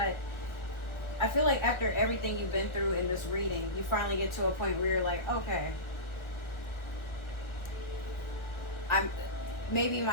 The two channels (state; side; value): late; right; 1.4 ms